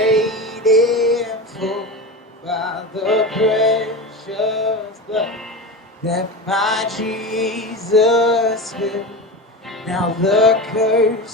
in full by the precious blood that my Jesus spilled. Now the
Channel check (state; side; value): normal; both; correlation 0.25